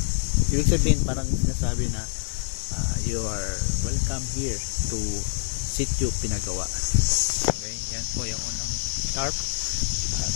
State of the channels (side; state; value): right; silent; 61 dB below the other